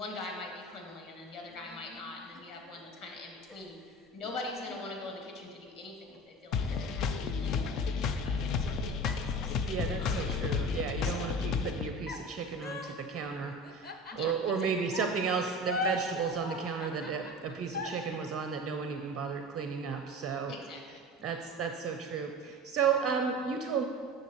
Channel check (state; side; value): normal; both; correlation 0.34